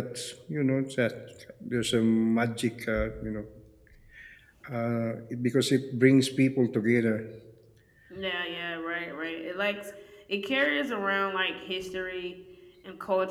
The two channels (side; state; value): both; identical; correlation 1.00